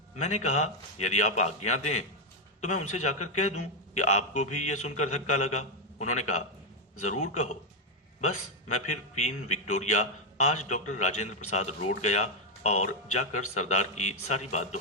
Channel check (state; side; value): normal; both; correlation 0.03